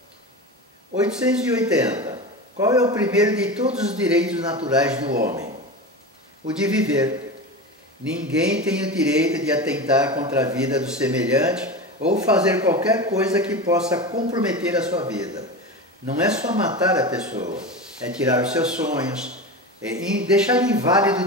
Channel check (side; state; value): both; normal; correlation 0.26